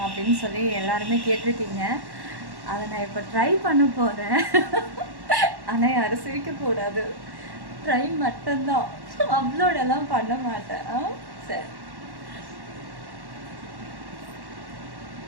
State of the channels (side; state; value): left; late; 1.1 ms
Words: அப்படின்னு சொல்லி எல்லாருமே கேட்டிருக்கீங்க. அதை நான் இப்போ ட்ரை பண்ண போகிறேன். ஆனால் யாரும் சிரிக்கக்கூடாது, ட்ரை மட்டும்தான், அப்லோடெல்லாம் பண்ண மாட்டேன். சரி,